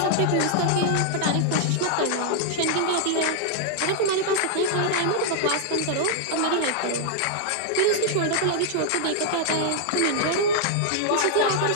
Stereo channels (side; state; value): both; different; correlation 0.00